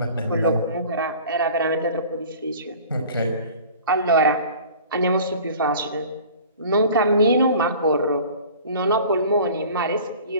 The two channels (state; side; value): inverted; both; correlation -0.44